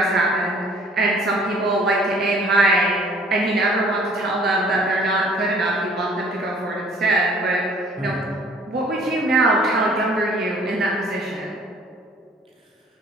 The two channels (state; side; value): normal; both; correlation 0.55